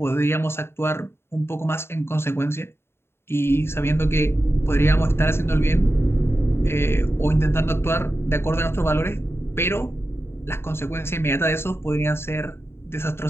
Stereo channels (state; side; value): late; right; 0.12 ms